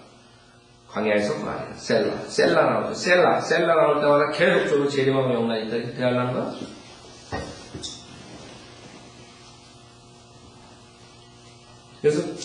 광야에서 말이야. 셀라 나오죠. 셀라 나올 때마다 계속적으로 재림하고 영란이 있다. 이렇게 대하려는 거야. 그래서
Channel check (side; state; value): both; identical; correlation 1.00